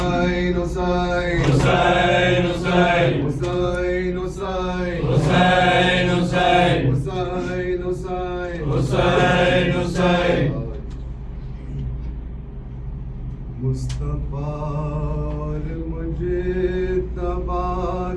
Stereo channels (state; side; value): identical; both; correlation 1.00